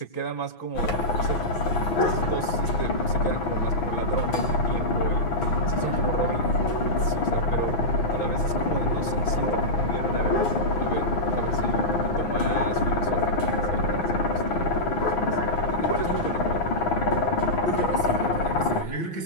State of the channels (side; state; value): right; late; 6.0 ms